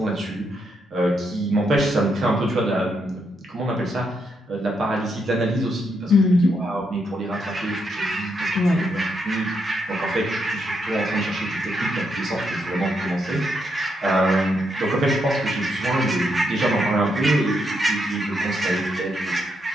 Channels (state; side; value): normal; both; correlation 0.79